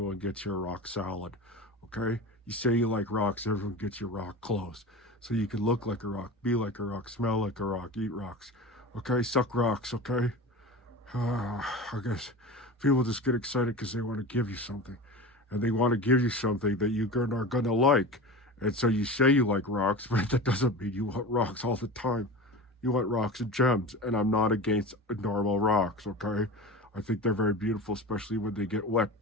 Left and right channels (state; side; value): normal; both; correlation 0.31